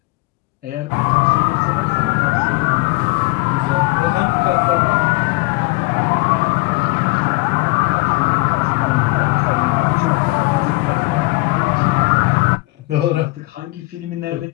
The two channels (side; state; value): right; quieter; 23.2 dB